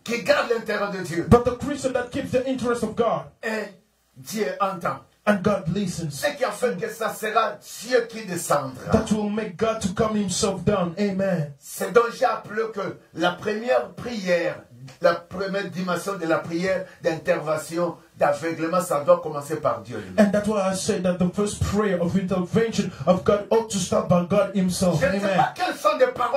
Qui garde l'intérêt de Dieu. But the Christian that keeps the interest of God. Et Dieu entend. And God listens. Ce qui a fait que ça sera Dieu qui descendra. That will make God to come himself down. Amen. C'est donc j'ai appelé que la première prière, la première dimension de la prière d'intervention, d'aveuglement, ça doit commencer par Dieu lui-même. And that's why I said that the first prayer of intervention of God ought to start by God himself. Je ne sais pas quelles sont les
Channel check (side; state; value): both; identical; correlation 1.00